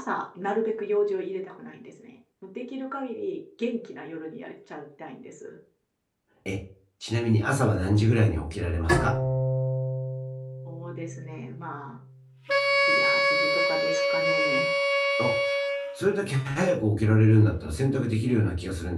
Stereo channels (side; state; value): both; identical; correlation 1.00